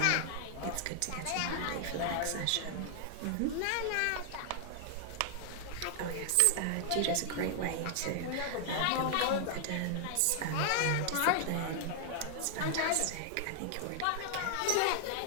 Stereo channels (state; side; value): different; both; correlation 0.00